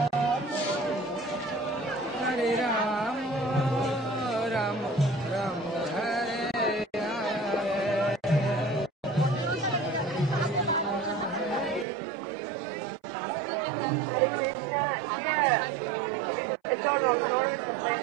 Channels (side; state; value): left; drops out; at 11.9 s